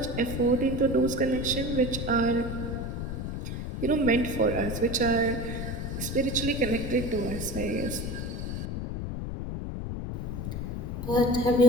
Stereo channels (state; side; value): noise; left; rumble, 4 dB below the sound